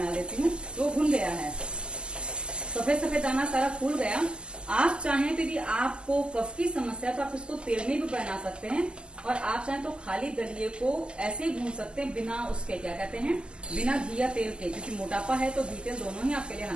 देती हूँ। तो भुन गया है, सफेद सफेद दाना सारा फूल गया। आप चाहें तो यदि आपको कफ की समस्या है तो आप इसको तेल में भी बना सकते हैं, और आप चाहें तो खाली दलिये को ऐसे ही भून सकते हैं, बिना उसके, क्या कहते हैं, बिना घी या तेल के। क्योंकि मोटापा है तो घी तेल दोनों ही आपके लिए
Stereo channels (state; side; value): late; left; 0.049 ms